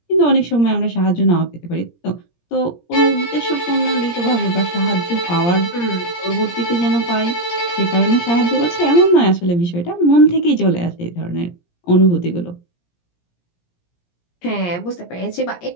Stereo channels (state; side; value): late; right; 17 ms